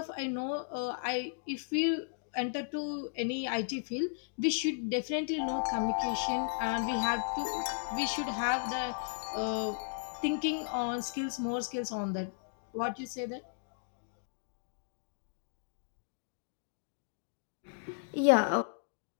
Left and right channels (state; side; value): silent; right; digital silence